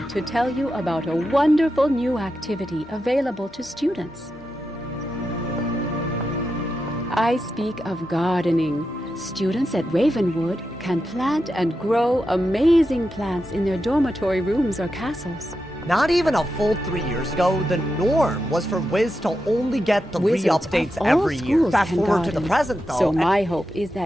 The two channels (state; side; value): normal; both; correlation 0.88